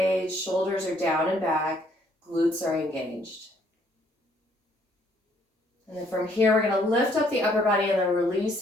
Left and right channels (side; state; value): both; normal; correlation 0.66